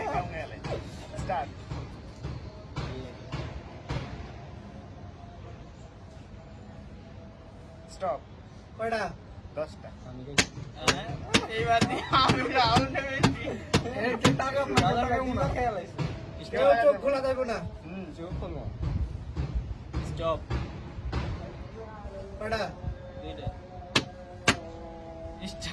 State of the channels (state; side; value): identical; both; correlation 1.00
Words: গেলে স্টার্ট। স্টপ। কয়টা? 10টা। আমি গেছি। হ্যাঁ, এইবার দিয়ে আমি রাউন্ড হয়েছি। খেয়াল আছে। কেউ চোখ খোলা যাবে না। চোখ খুলবো। স্টপ, কয়টা? দুইটা।